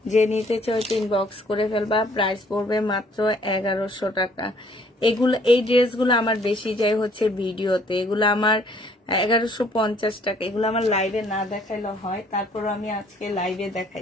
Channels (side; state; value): both; normal; correlation 0.61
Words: যে নিতে চাও ইনবক্স করে ফেলবা। প্রাইস পড়বে মাত্র 1100 টাকা। এগুলো, এই ড্রেসগুলো আমার বেশি যায় হচ্ছে ভিডিওতে, এগুলো আমার 1150 টাকা। এগুলো আমার লাইভে না দেখাইলে হয়, তারপর আমি আজকে লাইভে